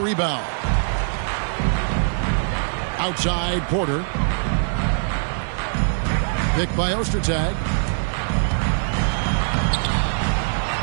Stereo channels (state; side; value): silent; left; 56 dB below the other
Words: Outside, Porter. Picked by Ostertag.